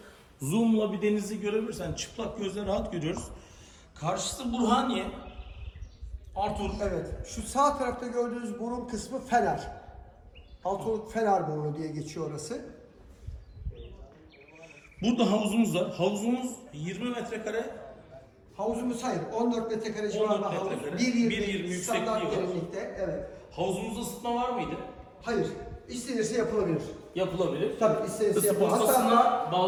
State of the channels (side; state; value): both; identical; correlation 1.00